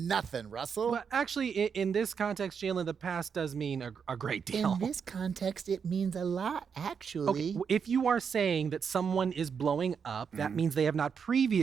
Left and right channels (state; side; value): quieter; left; 6.6 dB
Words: Russell. Well, actually, in this context, Jalen, the past does mean a great deal. In this context, it means a lot, actually. Okay, if you are saying that someone is blowing up, that means they have not